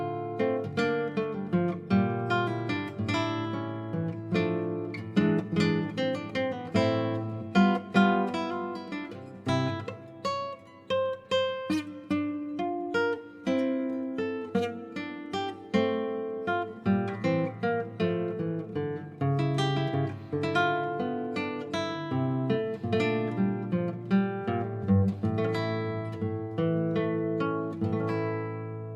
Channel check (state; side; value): identical; both; correlation 1.00